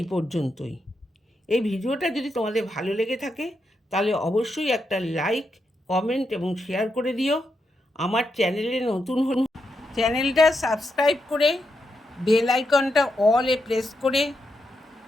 পর্যন্তই। এই ভিডিওটা যদি তোমাদের ভালো লেগে থাকে, তাহলে অবশ্যই একটা লাইক, কমেন্ট এবং শেয়ার করে দিও। আমার চ্যানেলে নতুন হন, চ্যানেলটা সাবস্ক্রাইব করে বেল আইকনটা অলে প্রেস করে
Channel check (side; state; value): both; normal; correlation 0.84